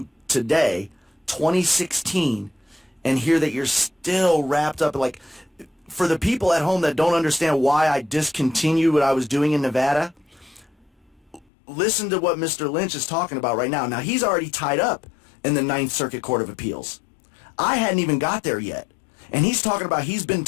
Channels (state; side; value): drops out; right; at 11.5 s